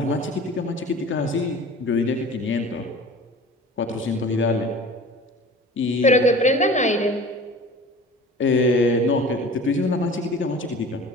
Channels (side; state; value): both; normal; correlation 0.41